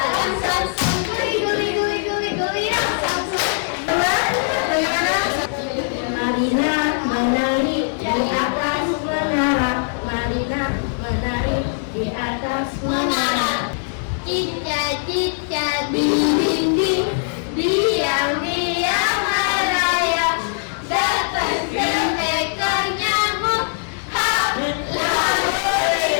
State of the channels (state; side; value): silent; right; digital silence